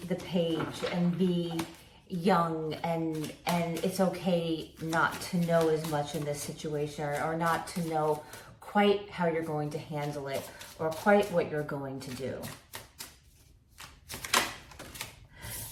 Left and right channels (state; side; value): identical; both; correlation 1.00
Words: the page and be young, and it's okay not to know as much in this situation, or not to know quite how you're going to handle it or quite what you're going to do.